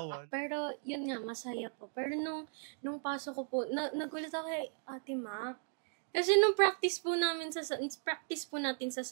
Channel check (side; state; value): left; silent; 53 dB below the other